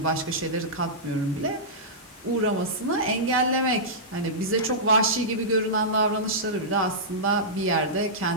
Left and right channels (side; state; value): both; normal; correlation -0.14